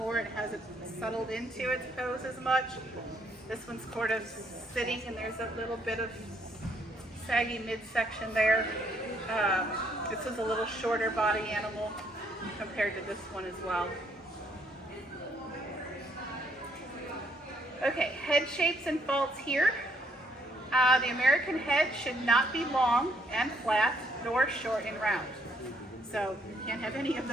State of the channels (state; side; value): normal; both; correlation 0.69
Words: It hasn't settled into its pose as much. This one's sort of sitting, and there's a little bit of saggy midsection there. This is a little shorter body animal compared to this one as well. Okay, head shapes and faults here. The American head should not be long and flat, nor short and round. So you can't have any of